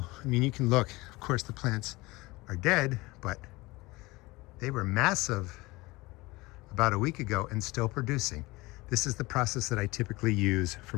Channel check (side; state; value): right; quieter; 21.9 dB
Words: I mean, you can look, of course the plants are dead, but they were massive about a week ago and still producing. This is the process that I typically use for